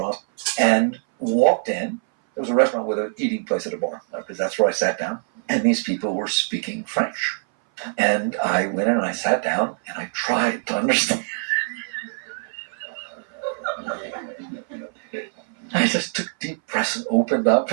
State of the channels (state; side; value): silent; left; 60 dB below the other